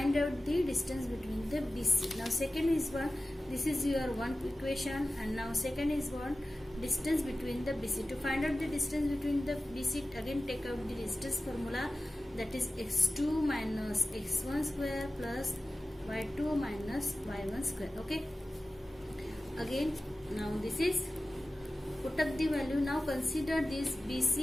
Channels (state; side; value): normal; both; correlation 0.95